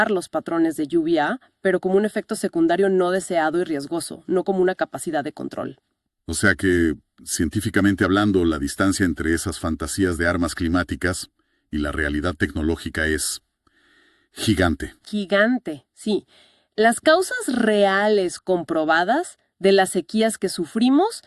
los patrones de lluvia, pero como un efecto secundario no deseado y riesgoso, no como una capacidad de control. O sea que, científicamente hablando, la distancia entre esas fantasías de armas climáticas y la realidad tecnológica es gigante. Gigante, sí. Las causas reales comprobadas de las sequías que sufrimos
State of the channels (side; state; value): both; identical; correlation 1.00